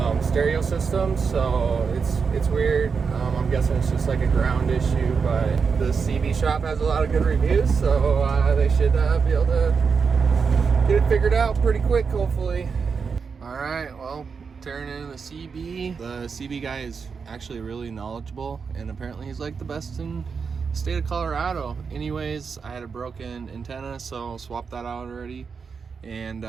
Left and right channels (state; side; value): quieter; left; 5.6 dB